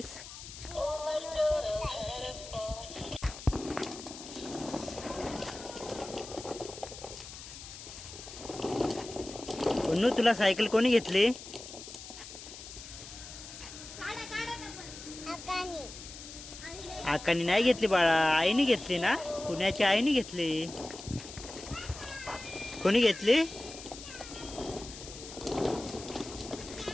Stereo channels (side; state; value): left; noise; hiss, 13 dB below the sound